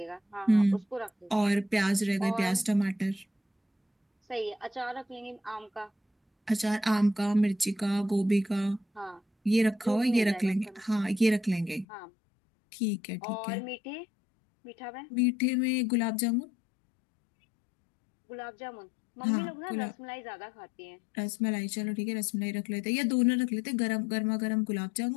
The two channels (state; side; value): drops out; right; at 11.9 s